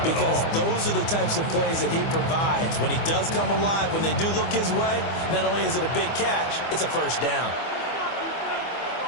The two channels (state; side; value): late; right; 25 ms